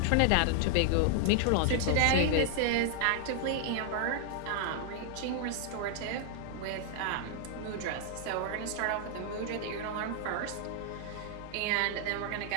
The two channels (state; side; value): different; both; correlation 0.00